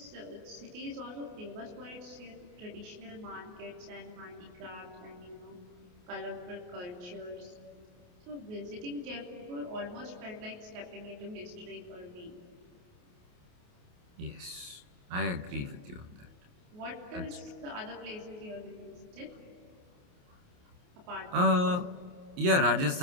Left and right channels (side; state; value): left; late; 28 ms